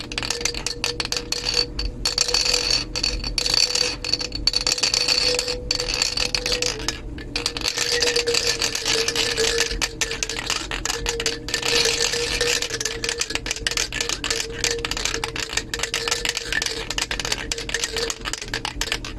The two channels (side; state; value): both; identical; correlation 1.00